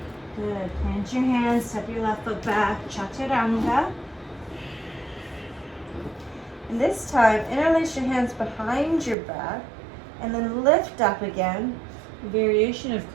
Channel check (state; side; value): drops out; left; at 9.2 s